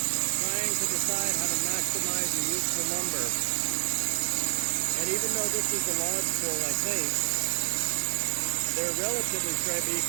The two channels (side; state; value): left; silent; 59 dB below the other